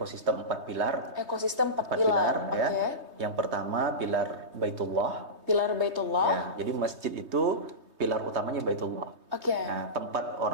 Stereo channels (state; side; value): late; left; 3.2 ms